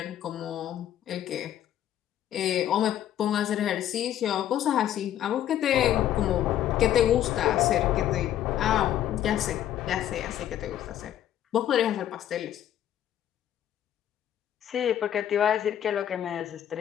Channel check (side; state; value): right; quieter; 11.3 dB